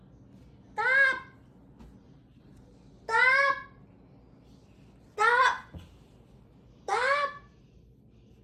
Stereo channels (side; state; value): both; identical; correlation 1.00